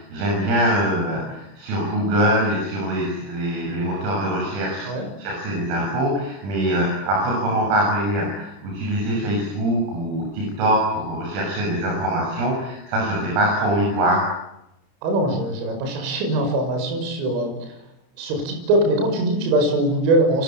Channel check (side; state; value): left; late; 30 ms